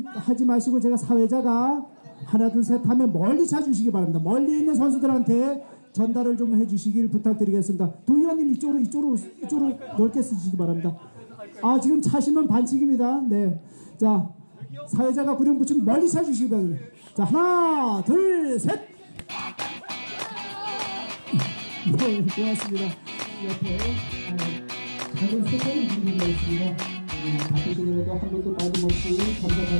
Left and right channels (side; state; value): both; inverted; correlation -1.00